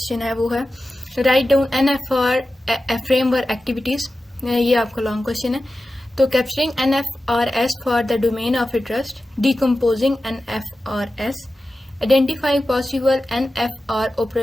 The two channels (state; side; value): normal; both; correlation 0.94